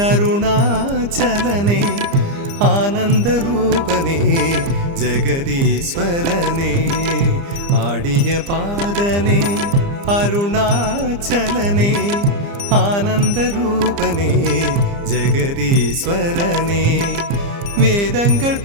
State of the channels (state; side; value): late; left; 30 ms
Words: அருணாச்சலனே, ஆனந்த ரூபனே ஜெகதீஸ்வரனே. ஆடிய பாதனே அருணாச்சலனே, ஆனந்த ரூபனே ஜெகதீஸ்வரனே. வேதங்கள்